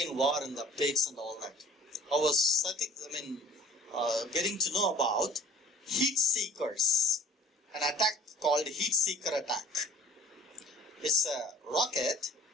war and the updates and all that. I was getting to know about heat seekers. An attack called heat seeker attack. It's a rocket.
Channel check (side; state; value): both; normal; correlation 0.47